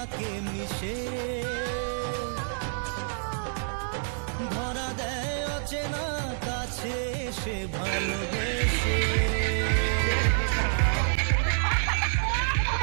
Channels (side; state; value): left; silent; 59 dB below the other